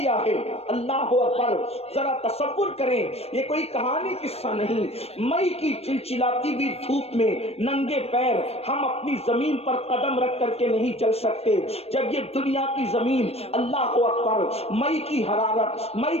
ہے. اللہ اکبر، ذرا تصور کریں، یہ کوئی کہانی قصہ نہیں. مئی کی چلچلاتی ہوئی دھوپ میں ننگے پیر ہم اپنی زمین پر قدم رکھ کر کے نہیں چل سکتے. جب یہ دنیا کی زمین اللہ اکبر مئی کی حرارت، مئی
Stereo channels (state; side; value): late; right; 0.29 ms